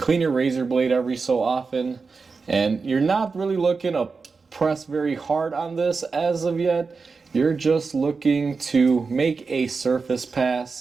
your razor blade every so often. And you're not really looking to press very hard on this as of yet. You're just looking to make a surface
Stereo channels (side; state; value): left; quieter; 4.6 dB